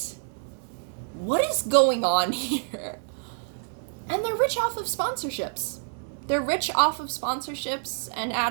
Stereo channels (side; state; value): left; silent; digital silence